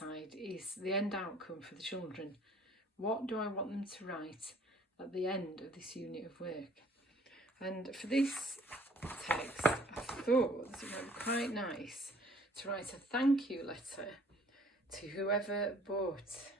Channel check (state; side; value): normal; both; correlation 0.57